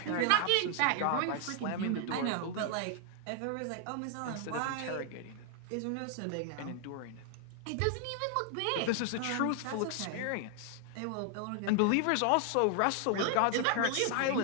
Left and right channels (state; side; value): different; both; correlation 0.00